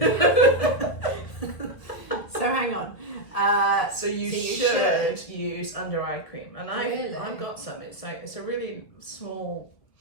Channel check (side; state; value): right; late; 2.0 ms